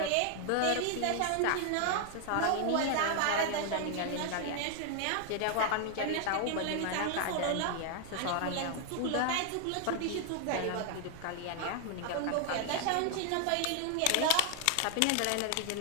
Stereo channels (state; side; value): different; both; correlation 0.00